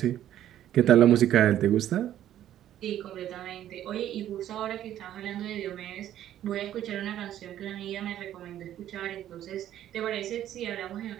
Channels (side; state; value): left; quieter; 11.8 dB